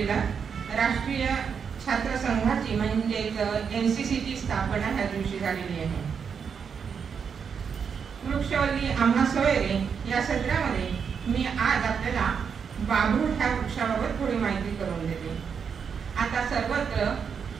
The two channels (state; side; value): quieter; left; 6.6 dB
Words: राष्ट्रीय छात्र संघाची म्हणजेच NCCची स्थापना ह्या दिवशी झालेली आहे. वृक्षवल्ली आम्हा सोयरे या सत्रामध्ये मी आज आपल्याला बाभूळ ह्या वृक्षाबाबत थोडी माहिती करून देते. आता सर्वत्र